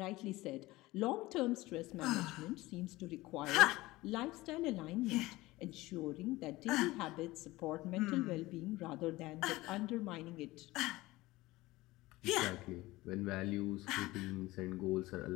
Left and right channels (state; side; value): quieter; right; 19.3 dB